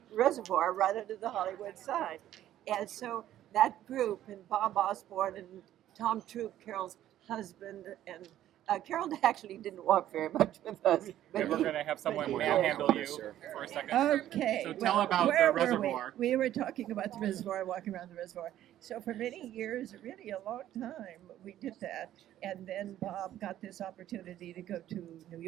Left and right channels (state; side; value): quieter; left; 12.5 dB